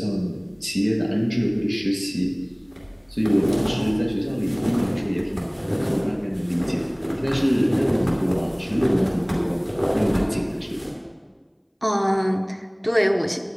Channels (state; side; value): identical; both; correlation 1.00